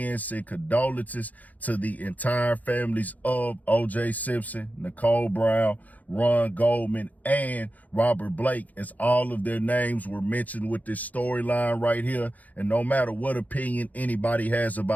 say condolences to the entire families of O.J. Simpson, Nicole Brown, Ron Goldman, and Robert Blake, as all of their names were mentioned with this storyline right here. And no matter what opinion anybody has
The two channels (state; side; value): late; right; 0.078 ms